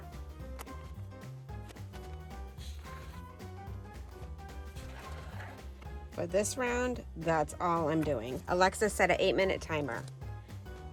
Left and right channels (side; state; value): both; identical; correlation 1.00